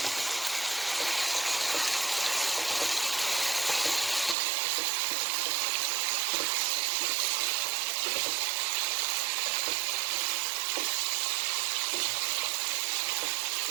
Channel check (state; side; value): drops out; left; at 4.4 s